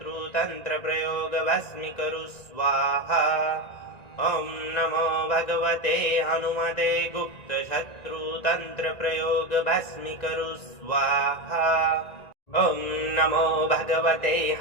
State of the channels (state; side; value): late; right; 1.9 ms